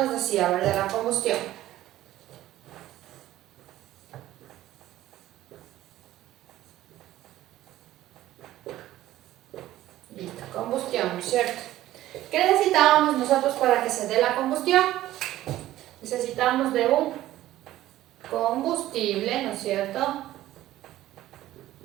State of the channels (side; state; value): left; quieter; 14.6 dB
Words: decía, a ver, de la combustión? Listo, combustión, ¿cierto? ¿Qué necesitábamos nosotros para que se dé la combustión? Necesitamos de un combustible, ¿no es cierto?,